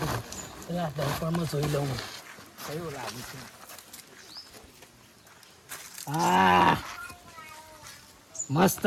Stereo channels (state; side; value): identical; both; correlation 1.00